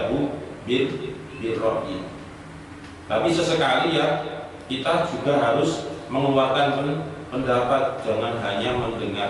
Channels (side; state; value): both; identical; correlation 1.00